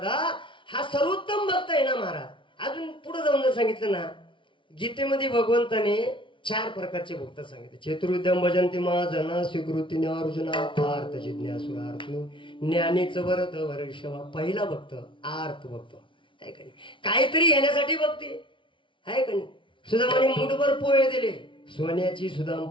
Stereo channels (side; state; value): right; late; 0.25 ms